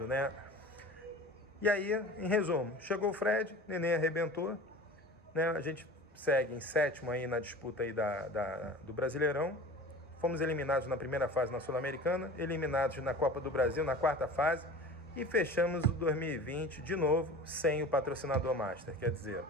né? E aí, em resumo, chegou o Fred, Nenê arrebentou, né? A gente segue em sétimo aí na disputa aí do Brasileirão, fomos eliminados na primeira fase na Sul-Americana, eliminados na Copa do Brasil na quarta fase e fechamos o 2020 de novo sem o patrocinador Master, quer dizer,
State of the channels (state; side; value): normal; both; correlation 0.38